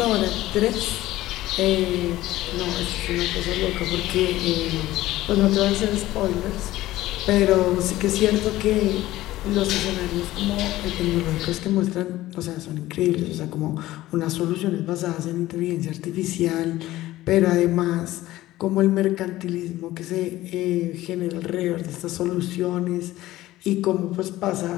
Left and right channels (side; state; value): right; quieter; 16.1 dB